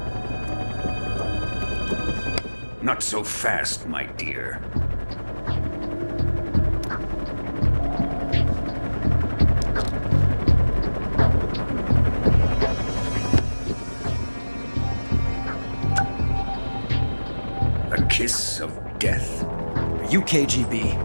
Not so fast, my dear. A kiss of death. Are you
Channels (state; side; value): inverted; both; correlation -1.00